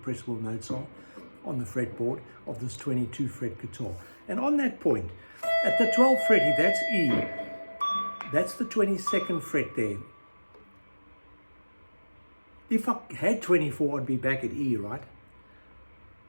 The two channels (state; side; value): inverted; both; correlation -1.00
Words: notes are on the fretboard of this 22 fret guitar. And on that point, at the 12th fret, if that's E, that's the 22nd fret there. If I had 24, I'd be back at E, right?